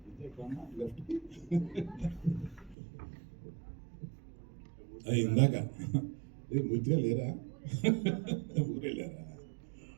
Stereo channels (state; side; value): drops out; left; at 2.8 s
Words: ఇందాక పూర్తిగా లేరా, ఊరే లేరా,